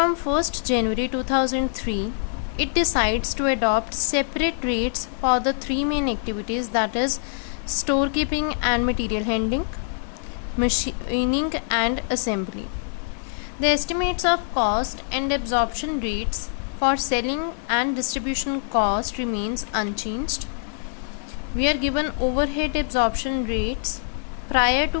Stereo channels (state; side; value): silent; right; 62 dB below the other